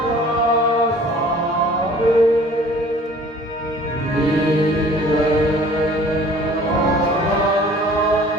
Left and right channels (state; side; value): normal; both; correlation 0.50